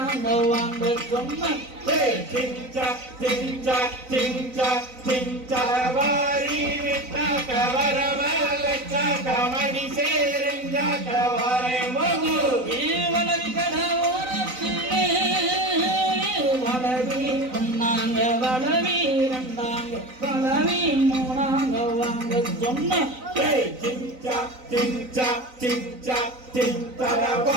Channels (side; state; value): left; late; 3.9 ms